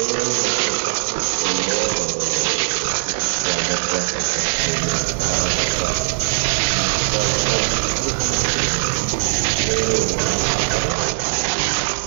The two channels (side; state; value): left; silent; digital silence